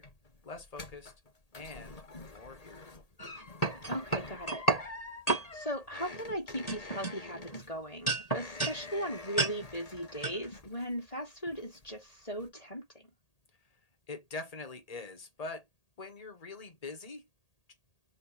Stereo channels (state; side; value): late; right; 1.8 ms